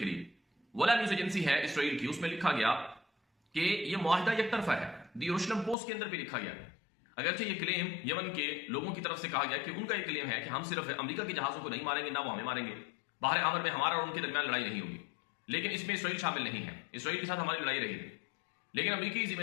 لیے۔ ولا نیوز ایجنسی ہے اسرائیل کی، اس میں لکھا گیا کہ یہ معاہدہ یک طرفہ ہے۔ دی یروشلم پوسٹ کے اندر بھی لکھا گیا، اگرچہ یہ کلیم یمن کے لوگوں کی طرف سے کہا گیا کہ ان کا یہ کلیم ہے کہ ہم صرف امریکہ کے جہازوں کو نہیں ماریں گے، نہ وہ ہمیں ماریں گے، باہر احمر میں ہمارا اور ان کے درمیان لڑائی نہیں ہوگی، لیکن اس میں اسرائیل شامل نہیں ہے، اسرائیل کے ساتھ ہماری لڑائی رہی ہے۔ لیکن امریکی ذمہ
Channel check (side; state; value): right; drops out; at 5.8 s